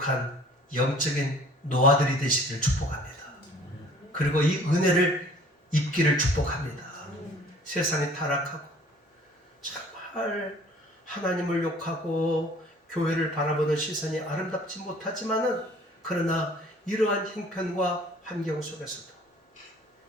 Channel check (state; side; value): normal; both; correlation 0.52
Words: 영적인 노아들이 되시기를 축복합니다. 그리고 이 은혜를 입기를 축복합니다. 세상이 타락하고 정말 하나님을 욕하고 교회를 바라보는 시선이 아름답지 못하지만은 그러나 이러한 형편과 환경 속에서도